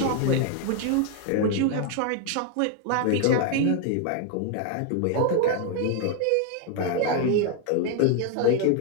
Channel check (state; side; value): different; both; correlation 0.00